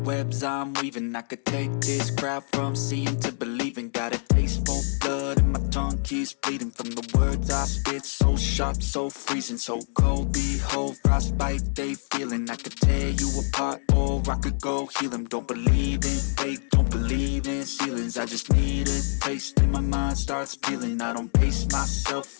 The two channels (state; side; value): silent; right; 61 dB below the other